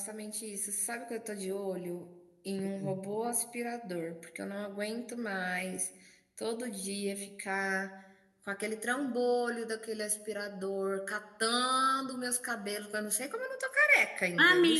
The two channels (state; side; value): identical; both; correlation 1.00